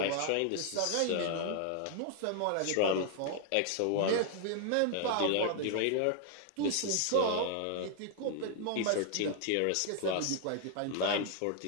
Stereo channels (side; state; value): both; different; correlation 0.00